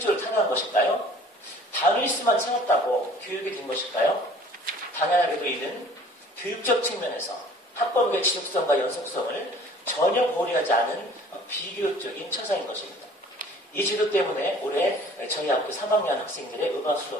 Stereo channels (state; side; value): normal; both; correlation 0.50